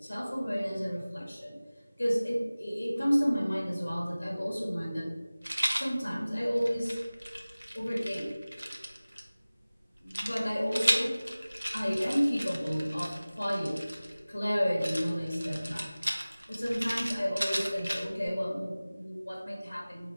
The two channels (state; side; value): inverted; both; correlation -0.99